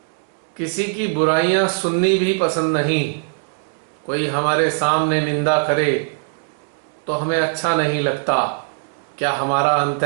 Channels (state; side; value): silent; left; digital silence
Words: किसी की बुराइयां सुननी भी पसंद नहीं? कोई हमारे सामने निंदा करे तो हमें अच्छा नहीं लगता। क्या हमारा